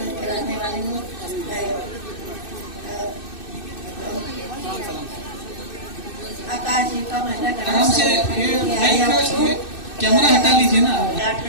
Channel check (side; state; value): right; late; 2.6 ms